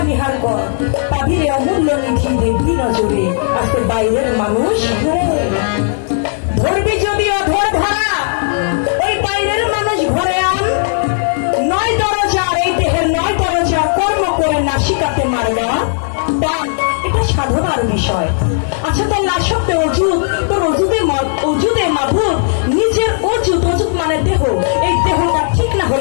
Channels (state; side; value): silent; right; digital silence